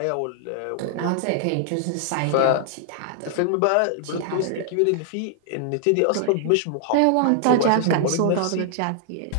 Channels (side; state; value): both; different; correlation 0.00